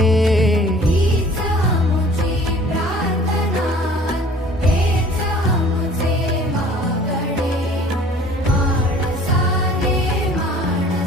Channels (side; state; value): both; normal; correlation 0.50